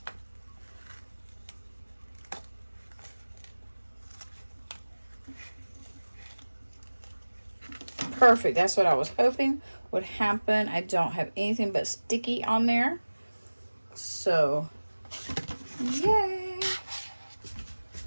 Perfect. That's what I was hoping would happen. I don't have anything but sticky on there. So, yay.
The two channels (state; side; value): inverted; both; correlation -1.00